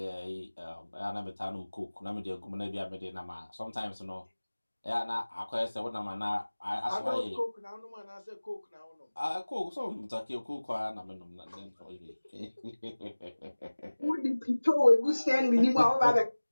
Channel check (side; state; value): both; inverted; correlation -1.00